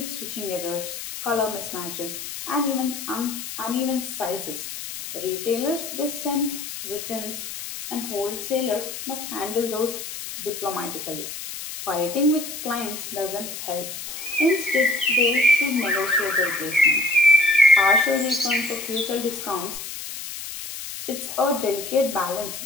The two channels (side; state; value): left; noise; hiss, 8 dB below the sound